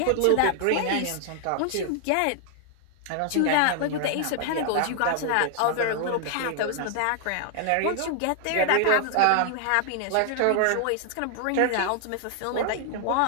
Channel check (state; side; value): different; both; correlation 0.00